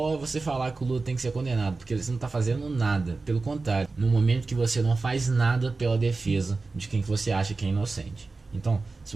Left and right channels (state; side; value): quieter; left; 3.8 dB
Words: a você falar que o Lula tem que ser condenado, porque você não está fazendo nada. Pelo contrário, no momento que você não faz nada pela defesa de quem que você acha que é inocente. Então, se